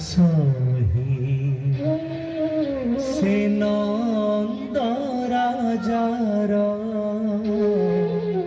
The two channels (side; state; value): both; identical; correlation 1.00